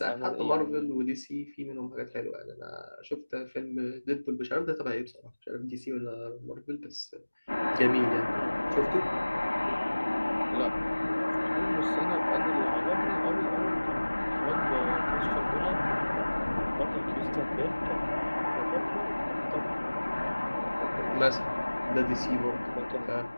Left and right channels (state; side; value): inverted; both; correlation -1.00